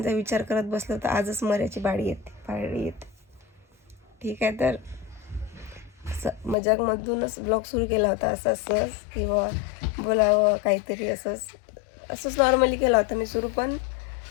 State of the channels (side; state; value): right; drops out; at 6.6 s